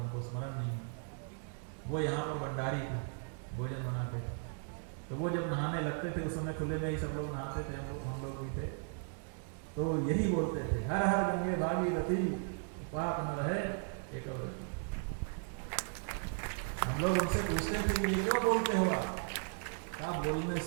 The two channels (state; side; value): silent; left; 54 dB below the other